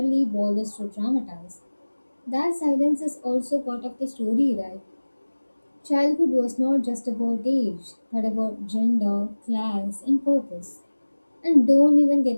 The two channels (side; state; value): both; inverted; correlation -1.00